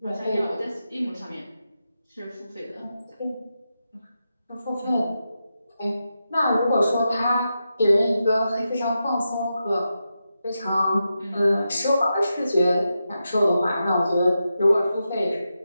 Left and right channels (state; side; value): inverted; both; correlation -0.88